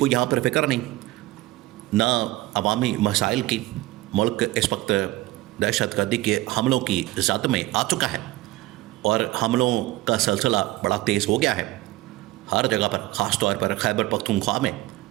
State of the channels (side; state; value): left; quieter; 18.5 dB